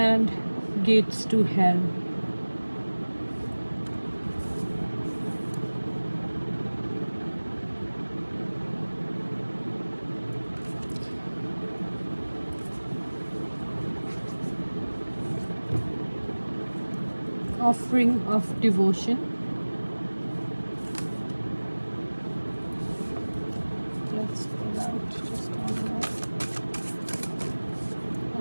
gates to hell. Offering of devotion. Let's pull out just one more.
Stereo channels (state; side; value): inverted; both; correlation -1.00